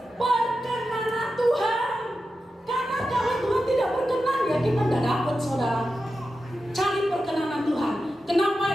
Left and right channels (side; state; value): both; normal; correlation 0.91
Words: perkenanan Tuhan. Karena kalau Tuhan tidak berkenan, ya kita tidak dapat, saudara. Cari perkenanan Tuhan.